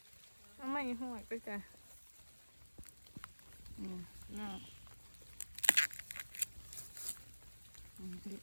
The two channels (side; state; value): both; inverted; correlation -1.00